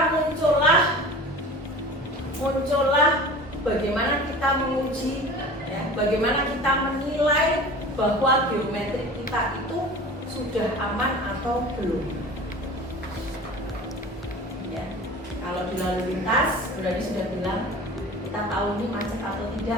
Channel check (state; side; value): normal; both; correlation 0.38